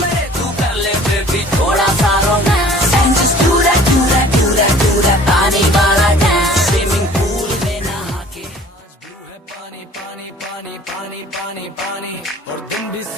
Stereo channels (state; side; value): normal; both; correlation 0.50